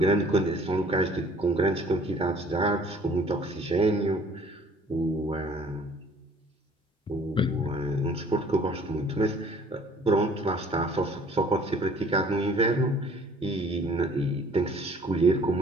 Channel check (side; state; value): both; normal; correlation 0.54